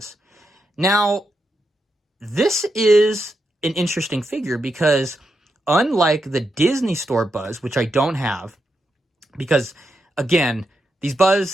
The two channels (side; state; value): both; normal; correlation 0.85